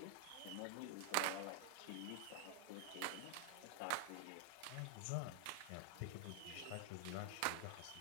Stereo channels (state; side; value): different; both; correlation 0.00